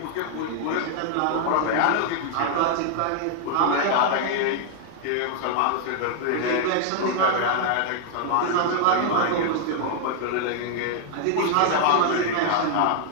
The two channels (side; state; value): both; different; correlation -0.01